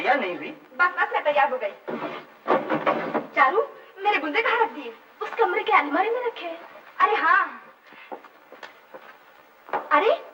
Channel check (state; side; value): identical; both; correlation 1.00